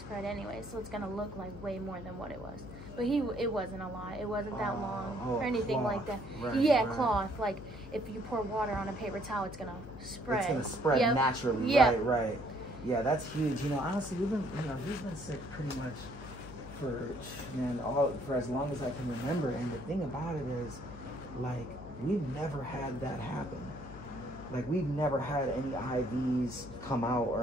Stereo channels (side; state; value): left; noise; hum, 14 dB below the sound